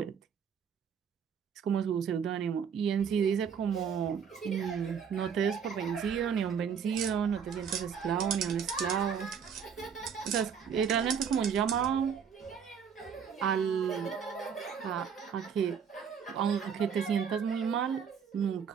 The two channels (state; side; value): quieter; left; 7.1 dB